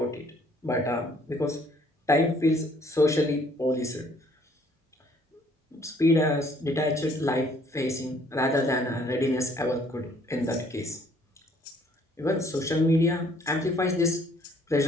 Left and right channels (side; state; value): both; normal; correlation 0.61